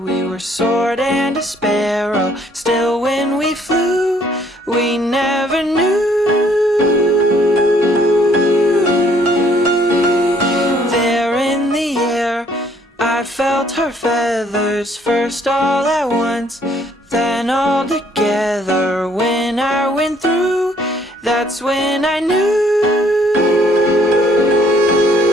we were sword and a sparrow. Still when we flew, we never knew. There in the air, I felt her feathers, first all at once, then all together. When I went through, that's when I knew.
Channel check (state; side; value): normal; both; correlation 0.63